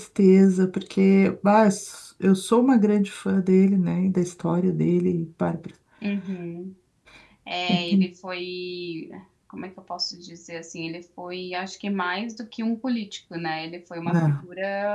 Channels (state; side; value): identical; both; correlation 1.00